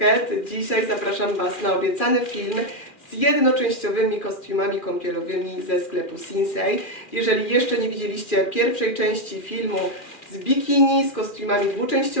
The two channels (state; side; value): late; right; 2.4 ms